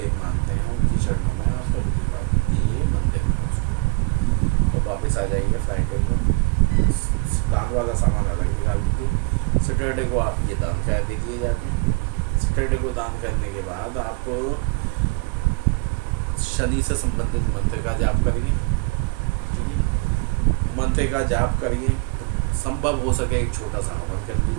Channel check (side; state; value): left; quieter; 28.9 dB